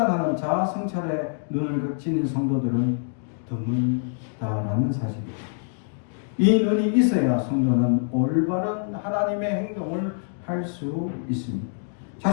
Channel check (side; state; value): right; silent; digital silence